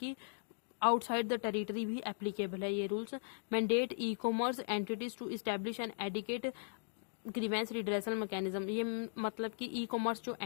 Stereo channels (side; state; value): right; silent; digital silence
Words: आउटसाइड द टेरिटरी भी एप्लीकेबल है ये rules. Mandate e commerce entities to establish an adequate grievance redressal mechanism. ये मतलब कि ई कॉमर्स जो